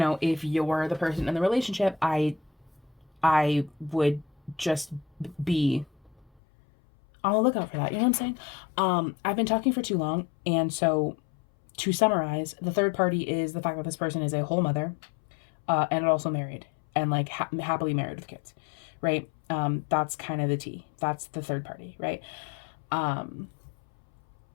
if you're the person in the relationship, I would just be on the lookout for that. You know what I'm saying? I've been talking for too long, and so to summarize, the third party is the fact that this person is a whole mother, and also married and like happily married with kids, right? That's kind of the T. That's the third party, right? And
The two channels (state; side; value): drops out; right; at 6.2 s